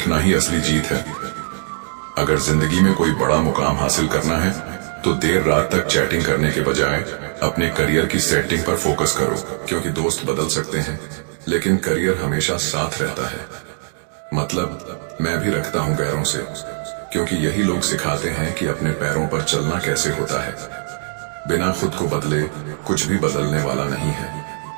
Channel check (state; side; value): silent; left; digital silence